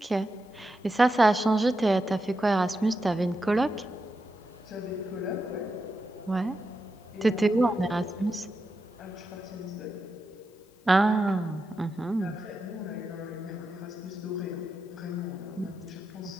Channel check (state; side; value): normal; both; correlation 0.87